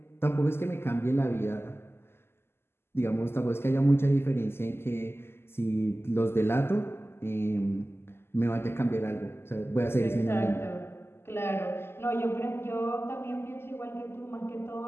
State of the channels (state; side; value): late; right; 0.12 ms